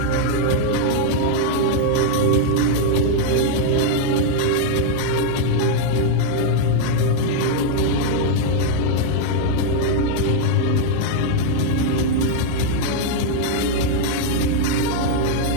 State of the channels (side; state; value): both; different; correlation 0.00